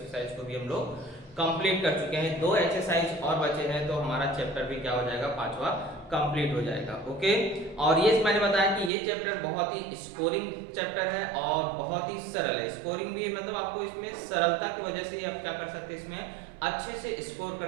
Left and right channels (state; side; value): drops out; left; at 8.9 s